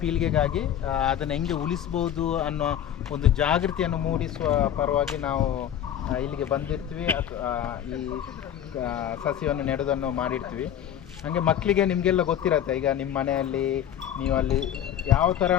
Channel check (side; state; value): right; quieter; 10.1 dB